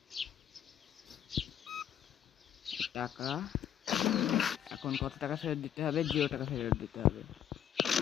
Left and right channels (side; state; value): right; quieter; 9.8 dB